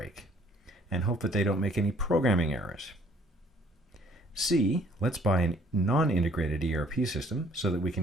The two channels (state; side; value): normal; both; correlation 0.60